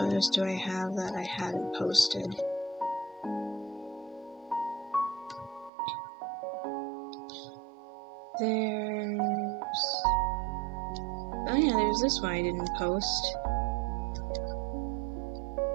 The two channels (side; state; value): left; drops out; at 5.7 s